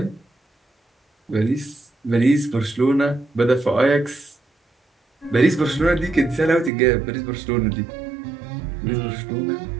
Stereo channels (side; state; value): left; drops out; at 6.7 s